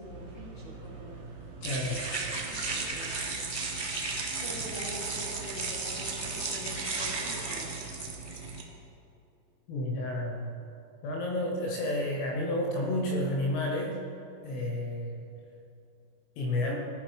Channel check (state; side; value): late; right; 22 ms